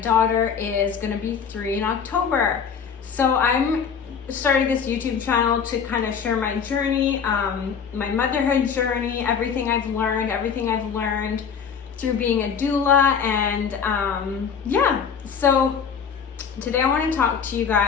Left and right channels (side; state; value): right; quieter; 6.8 dB